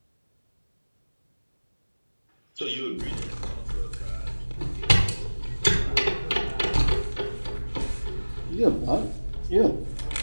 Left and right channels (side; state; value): both; inverted; correlation -1.00